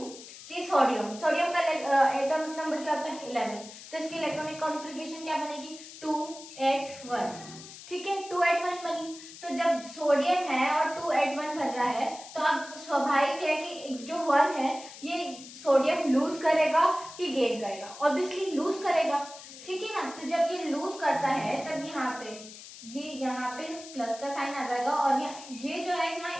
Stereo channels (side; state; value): left; noise; hiss, 15 dB below the sound